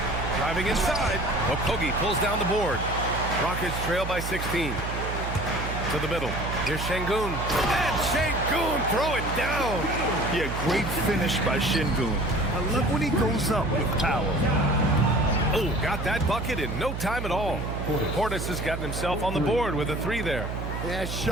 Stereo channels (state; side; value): noise; right; hum, 5 dB below the sound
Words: Driving inside, Okogie pulls down the board. Rockets trail by 16. To the middle. Here's Şengün. And Şengün throw it down. Yeah, great finish by Şengün. I love when he goes up with power. Oh, got that bucket in no time at all. Portis has gotten himself on the board with a 3 there. Yeah,